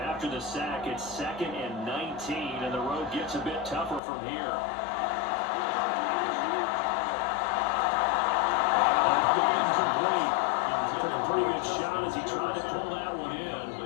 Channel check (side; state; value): right; drops out; at 4.0 s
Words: the sack, it's 2nd and 19, and the road gets a bit tougher from here. Incomplete. Took a pretty good shot as he tried to pull that one in.